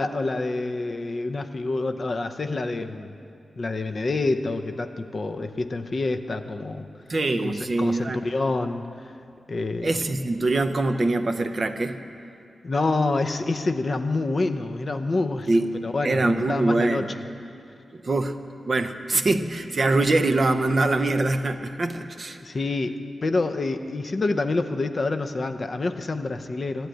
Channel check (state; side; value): normal; both; correlation 0.92